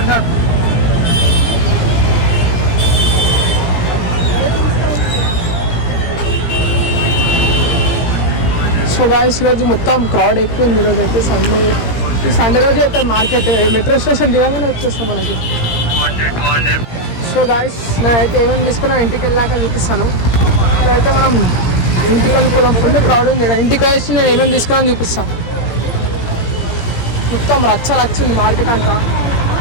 సో గాయస్ ఈరోజు మొత్తం క్రౌడ్ ఎక్కువ ఉంది. ఈరోజు అయితే సండే రోజు అయితే మార్కెట్ మెట్రో స్టేషన్ దిగంగానే వచ్చేస్తాం మనకి. సో గాయస్ నేనైతే ఏమేమి తీసుకున్నా ఇంటికి వెళ్ళాక చూపిస్తాను. ఇప్పుడైతే మనం ఇంటికి వెళ్ళిపోదాం. ఫుల్ క్రౌడ్ ఉంది. ఇంటికి వచ్చి నేను ఏమేమి తీసుకున్నాను చూపిస్తాను. మొత్తం రచ్చ ఉంది మార్కెట్ అంతా,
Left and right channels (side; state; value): right; late; 17 ms